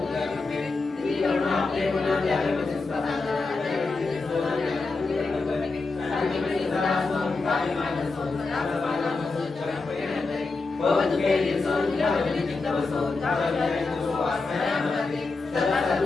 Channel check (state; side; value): quieter; right; 3.8 dB